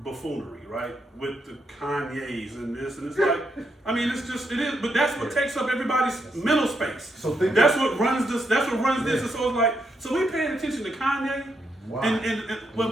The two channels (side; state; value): both; normal; correlation 0.80